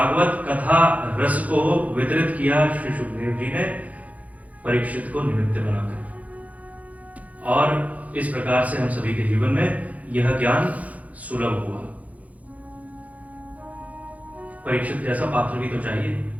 कथा रस को वितरित किया श्री सुखदेव जी ने परीक्षित को निमित्त बनाकर। और इस प्रकार से हम सभी के जीवन में यह ज्ञान सुलभ हुआ। परीक्षित जैसा पात्र भी तो चाहिए।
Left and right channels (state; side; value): late; left; 0.071 ms